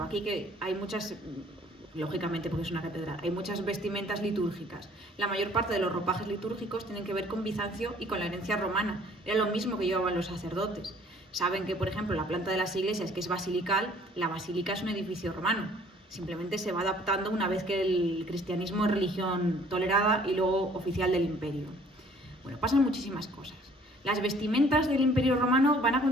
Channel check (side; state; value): both; normal; correlation 0.56